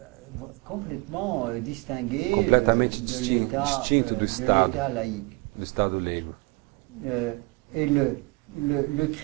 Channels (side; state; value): left; quieter; 25.9 dB